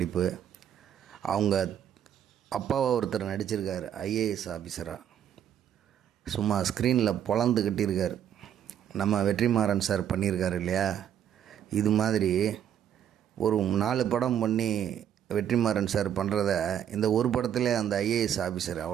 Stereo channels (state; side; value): quieter; left; 9.8 dB